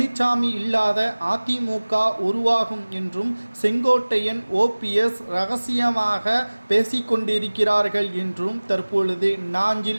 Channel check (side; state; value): both; inverted; correlation -1.00